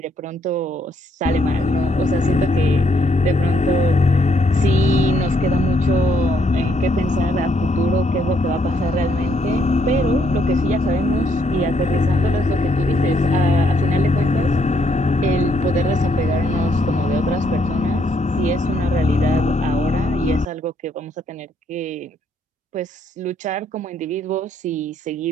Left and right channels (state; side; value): normal; both; correlation 0.71